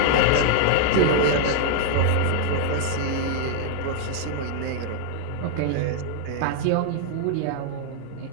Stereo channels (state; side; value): different; both; correlation 0.00